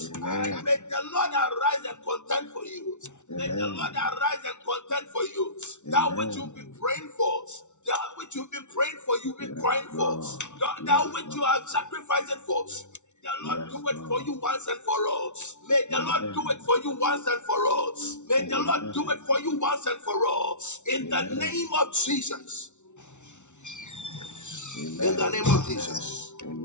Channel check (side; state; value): right; late; 0.83 ms